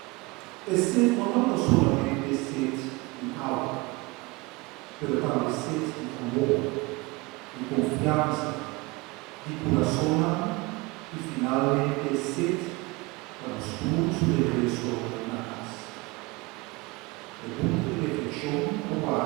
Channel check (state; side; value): quieter; left; 24.1 dB